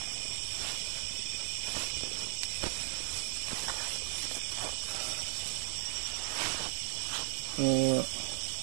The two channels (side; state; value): left; silent; 54 dB below the other